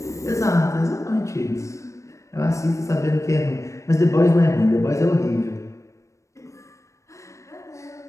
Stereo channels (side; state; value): right; late; 0.15 ms